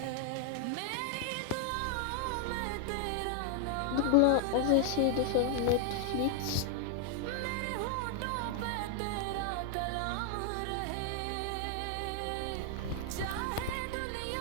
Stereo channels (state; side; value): different; both; correlation 0.00